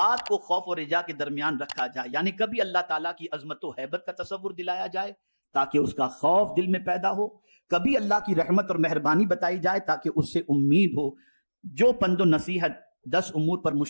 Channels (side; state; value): both; inverted; correlation -1.00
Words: کو خوف و رجا کے درمیان رکھا جائے، یعنی کبھی اللہ تعالیٰ کی عظمت و ہیبت کا تصور دلایا جائے تاکہ اس کا خوف دل میں پیدا ہو، کبھی اللہ کی رحمت اور مہربانی بتائی جائے تاکہ اس سے امید ہو۔ جو پند و نصیحت 10 امور پر